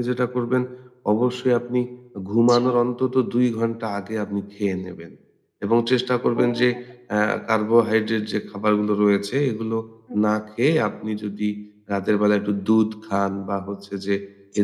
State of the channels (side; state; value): both; identical; correlation 1.00